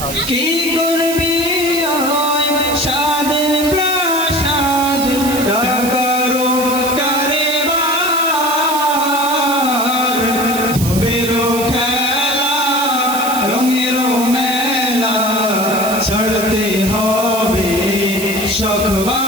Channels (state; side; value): noise; right; hiss, 7 dB below the sound